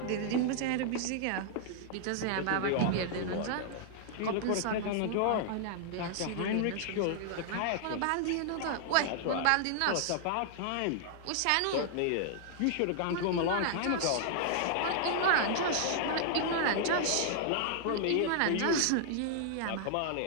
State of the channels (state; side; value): different; both; correlation -0.01